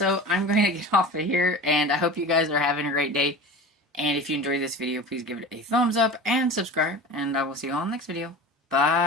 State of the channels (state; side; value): normal; both; correlation 0.34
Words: I'm going to get off of here, and I hope you guys are having a great day. And if you enjoyed this video, please give it a thumbs up and subscribe, and I will see you all in the next video.